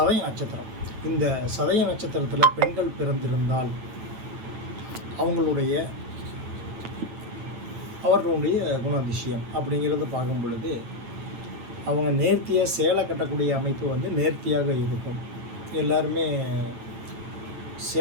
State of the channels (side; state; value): left; late; 9.0 ms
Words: நட்சத்திரம். இந்த சதய நட்சத்திரத்தில் பெண்கள் பிறந்திருந்தால் அவர்களுடைய குணாதிசயம் அப்படிங்கிறத பார்க்கும் பொழுது அவங்க நேர்த்தியாக சேலை கட்டக்கூடிய அமைப்பு நேர்த்தியாக இருக்கும். எல்லாருமே